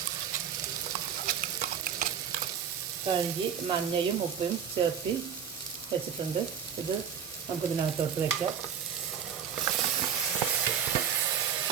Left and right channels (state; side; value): quieter; left; 7.8 dB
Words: കഴുകി മഞ്ഞയും ഉപ്പും ചേർത്തി വെച്ചിട്ടുണ്ട്. ഇത് നമുക്കിതിനകത്തോട്ട് വയ്ക്കാം.